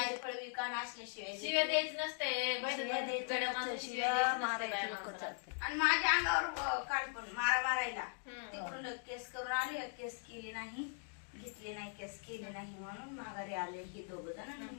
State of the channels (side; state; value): right; silent; 51 dB below the other